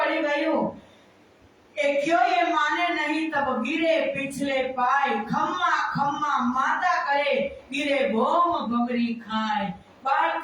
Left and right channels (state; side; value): identical; both; correlation 1.00